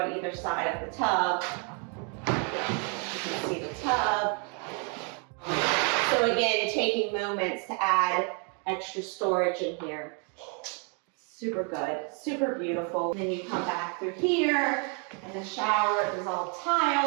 either side of the tub. You can see the tub. So again, taking moments to add extra storage in here. Super good, super beautiful. And then you come back through here, and the shower is all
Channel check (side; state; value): left; quieter; 37.6 dB